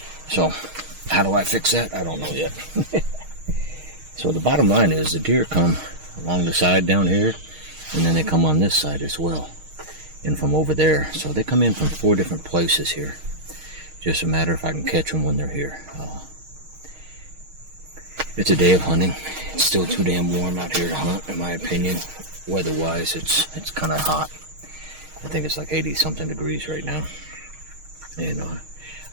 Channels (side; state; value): left; late; 6.4 ms